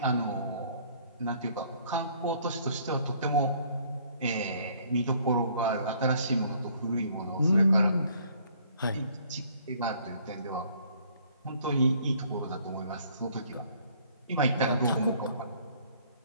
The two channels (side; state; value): both; inverted; correlation -0.60